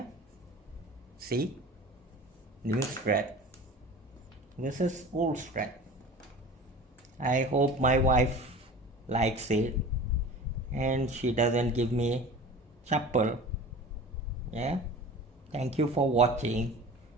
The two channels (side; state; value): both; normal; correlation 0.38